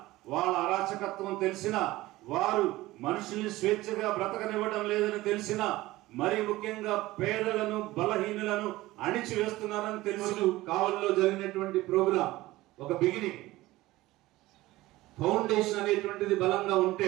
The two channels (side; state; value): left; quieter; 18.0 dB